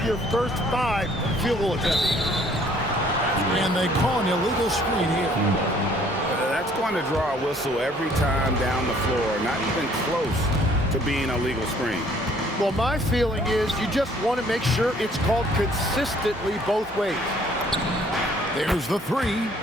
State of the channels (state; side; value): normal; both; correlation 0.59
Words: your first 5 field goal attempts. And they call an illegal screen here. That's going to draw a whistle every time down the floor. Not even close to being a legal screen. Well, my feeling is you just want to make sure it's called consistently both ways. There's the 3.